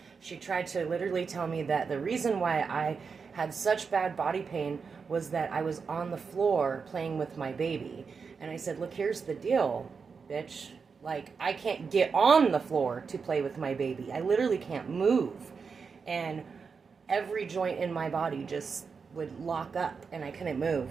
She tried to literally tell me that the reason why I had such bad body pain was that I was on the floor playing with my baby. And I said, look, here's the deal, bitch. Like, I can't get on the floor to play with my baby. I literally can't move. And every joint in my body just would lock up and I couldn't move.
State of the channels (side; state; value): left; quieter; 5.4 dB